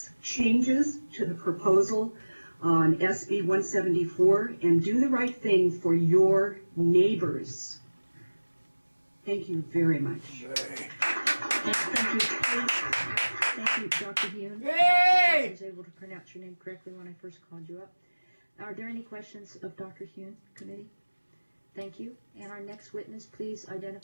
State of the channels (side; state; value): both; inverted; correlation -1.00